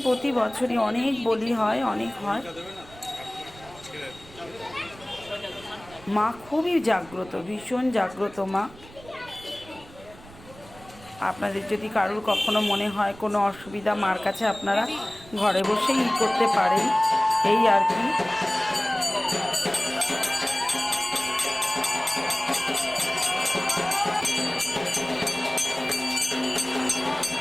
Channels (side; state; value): right; noise; rumble, 21 dB below the sound